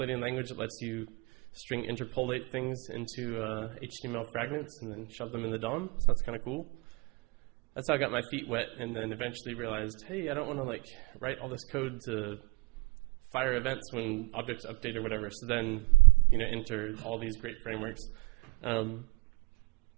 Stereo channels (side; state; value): left; quieter; 27.0 dB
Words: language that lets you string interpolate things into HTML fragments and then shove them in the DOM, so that's kind of cool. That's how I got my feet wet, and then eventually realized, hey, I don't want to like write all this code to fire events when objects update or whatever. So then, enter all these great frameworks. So